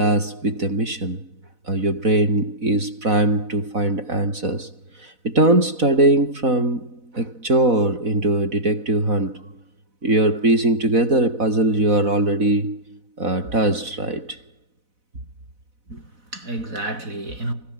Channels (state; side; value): late; left; 4.0 ms